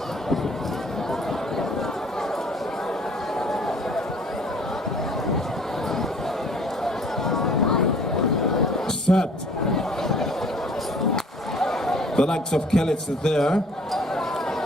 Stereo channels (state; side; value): normal; both; correlation 0.54